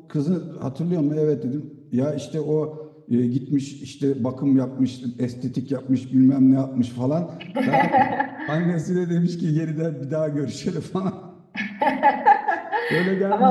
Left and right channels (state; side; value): identical; both; correlation 1.00